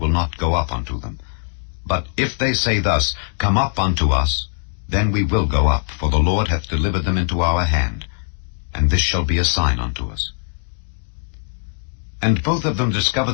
not go up unto them. But if they say thus, Come up unto us, then we will go up, for the Lord hath delivered them into our hand, and this shall be a sign unto us. And both of them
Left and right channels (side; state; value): right; silent; digital silence